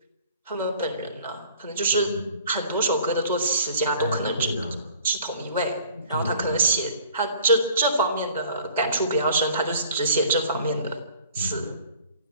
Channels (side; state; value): both; inverted; correlation -0.50